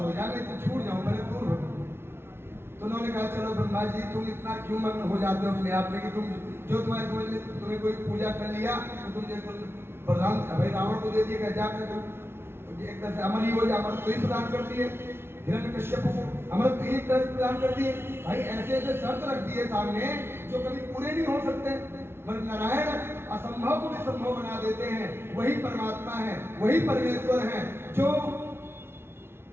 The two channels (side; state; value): left; late; 0.12 ms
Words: जाए, मैं इससे छूट जाऊं, मेरे दूर हो। तो उन्होंने कहा चलो ब्रह्मा जी तुम इतना क्यों मग्न हो जाते हो अपने आप में कि तुम जो तुम्हारे समझ में तुम्हें कोई पूजा कर लिया तो तुम देखो प्रधान भाई रावण को दे दिया, जाकर तुम एक तरह से अमर ही हो जाए, अमर तो ही प्रदान कर दिए, हिरण्यकश्यप को अमर तो ही एक तरह से प्रदान कर दिए। भाई ऐसे ऐसे शर्त रख दिए सामने जो कभी पूरे नहीं हो सकते। मगर नारायण असंभव को भी संभव बना देते हैं, वही परमात्मा है, वही परमेश्वर है जो